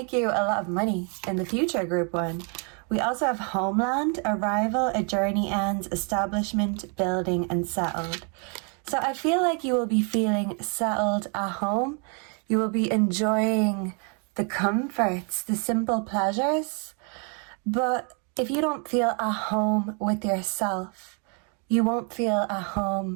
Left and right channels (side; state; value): left; quieter; 38.2 dB